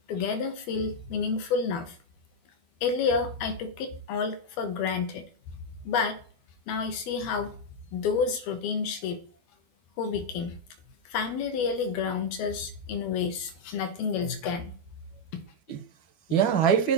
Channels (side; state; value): right; late; 12 ms